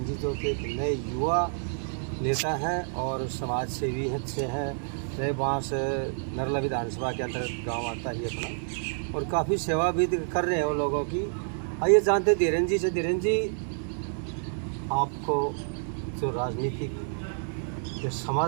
जी, जो कि एक नए युवा नेता हैं और समाज सेवी अच्छे हैं। नए बांस नरला विधानसभा के अंतर्गत गांव आता ही अपना, और काफ़ी सेवा भी कर रहे हैं वो लोगों की। आइए जानते हैं धीरेन जी से। धीरेन जी, आपको जो राजनीतिक जो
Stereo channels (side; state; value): left; silent; 56 dB below the other